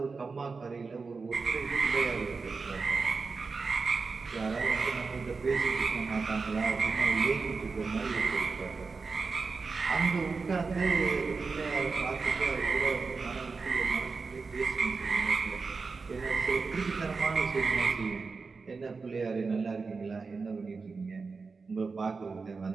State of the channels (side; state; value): left; quieter; 4.5 dB